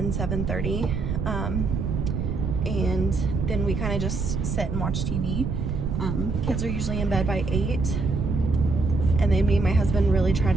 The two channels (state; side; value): noise; right; rumble, 2 dB below the sound